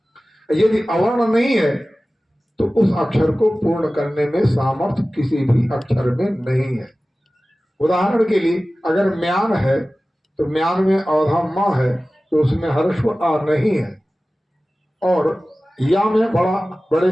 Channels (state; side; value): normal; both; correlation 0.96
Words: यदि अवर्ण नहीं है तो उस अक्षर को पूर्ण करने में सामर्थ्य किसी भी अक्षर में नहीं है। उदाहरण के लिए अगर म्यान है तो म्यान में औधा माँ है तो उसमें हर्ष आ नहीं है, और या में